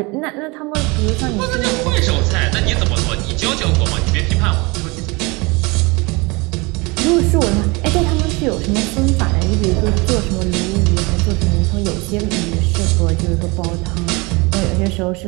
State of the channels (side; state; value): left; quieter; 26.3 dB